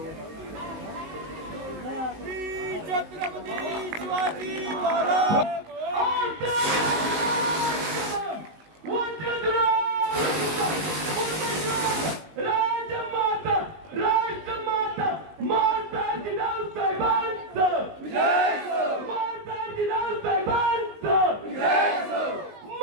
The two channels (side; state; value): left; late; 19 ms